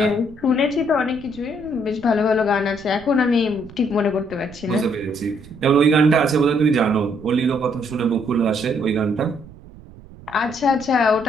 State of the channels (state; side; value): noise; right; rumble, 20 dB below the sound